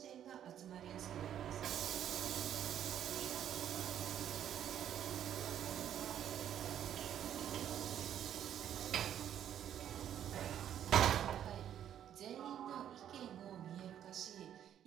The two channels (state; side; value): quieter; left; 10.1 dB